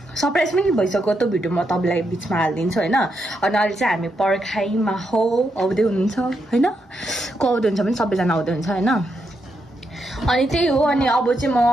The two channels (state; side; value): normal; both; correlation 0.82